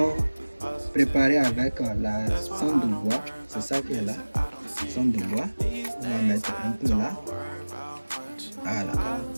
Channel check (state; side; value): inverted; both; correlation -1.00